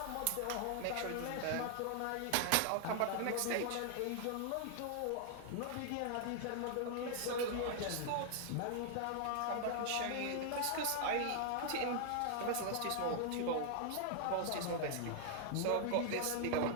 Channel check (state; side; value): different; both; correlation 0.00